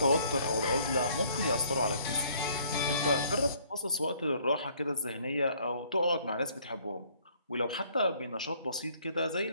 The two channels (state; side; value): inverted; both; correlation -0.61